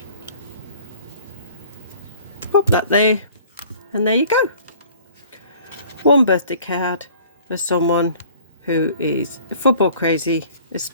Pop that there, and there you go. One birthday card for someone who is football crazy,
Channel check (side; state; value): both; inverted; correlation -0.51